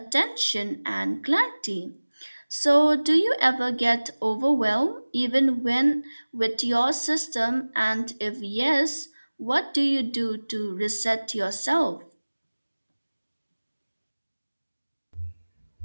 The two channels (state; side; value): inverted; both; correlation -1.00